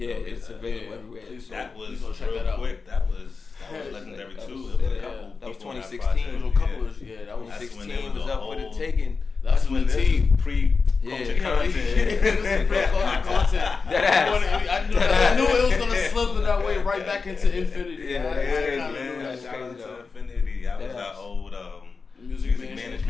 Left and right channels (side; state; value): right; quieter; 4.7 dB